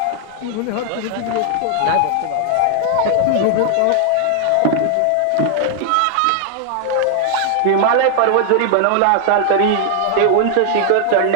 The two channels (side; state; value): both; different; correlation 0.00